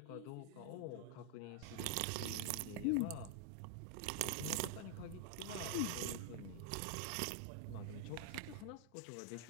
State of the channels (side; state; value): both; different; correlation 0.00